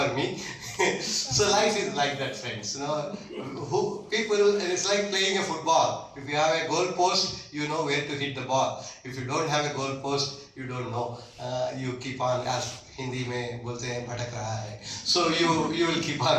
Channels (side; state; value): both; identical; correlation 1.00